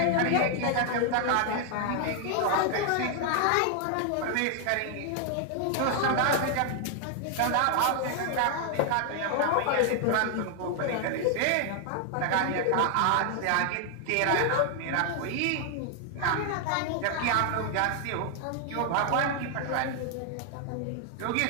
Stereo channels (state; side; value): different; both; correlation 0.00